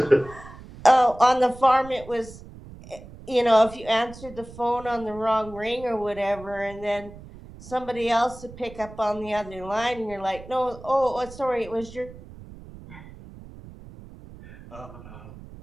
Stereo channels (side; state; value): right; noise; rumble, 17 dB below the sound